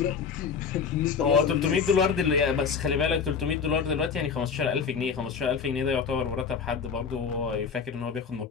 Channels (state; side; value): quieter; right; 6.1 dB